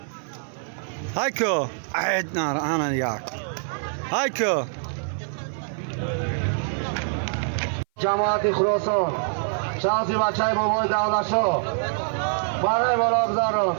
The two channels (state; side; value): silent; left; 57 dB below the other